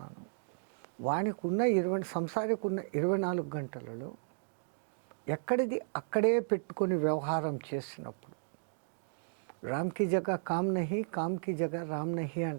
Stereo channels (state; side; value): silent; left; digital silence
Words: వానికి ఉన్న సంసారికి ఉన్న 24 గంటలలో ఎక్కడిది అక్కడే పెట్టుకొని వ్యవహారం చేసినప్పుడు రామ్కి జగ కామ్ నహి, కామ్కి జగ రామ్ నహి